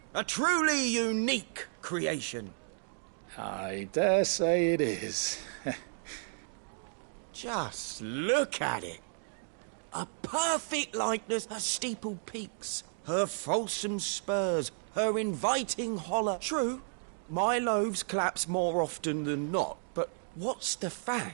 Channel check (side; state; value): left; silent; digital silence